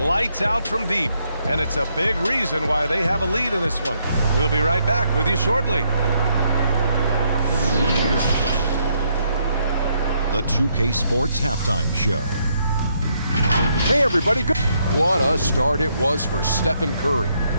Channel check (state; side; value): inverted; both; correlation -0.74